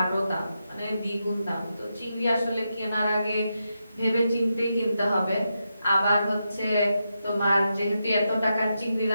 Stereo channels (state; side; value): inverted; both; correlation -0.86